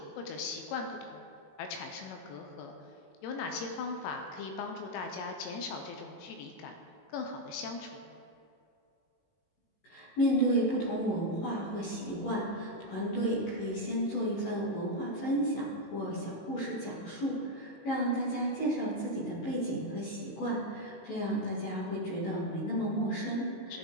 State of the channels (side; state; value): right; late; 18 ms